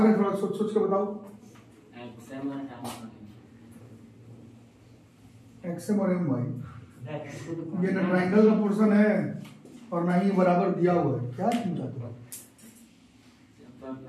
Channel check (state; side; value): identical; both; correlation 1.00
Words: है, थोड़ा सोच सोच के बताओ। XM और MY, ये ना ट्राइंगल का पोर्शन है और ना ही बराबर दिया हुआ है। क्या क्यों चाहते हो?